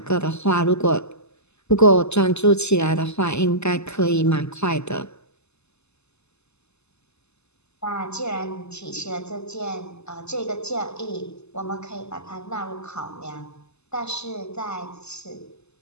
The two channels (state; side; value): late; right; 0.80 ms